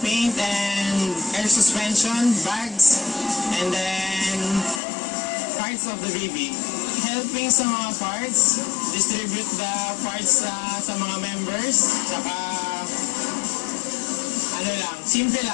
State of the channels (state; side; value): drops out; right; at 4.8 s